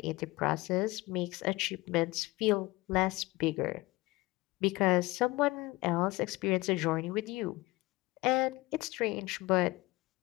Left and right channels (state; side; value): quieter; right; 21.1 dB